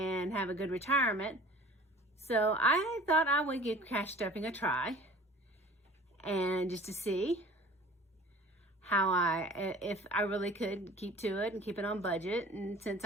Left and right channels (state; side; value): normal; both; correlation 0.45